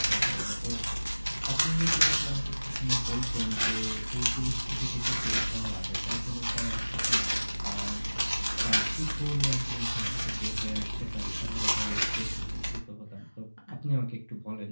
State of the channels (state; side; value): inverted; both; correlation -1.00